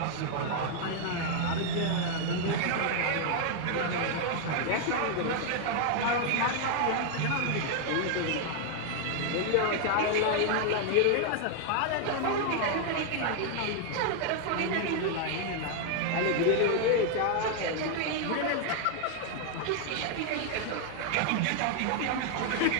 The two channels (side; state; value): both; different; correlation 0.00